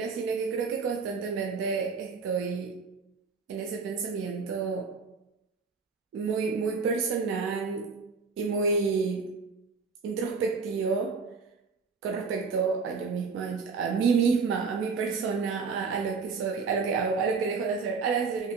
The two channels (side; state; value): left; quieter; 4.9 dB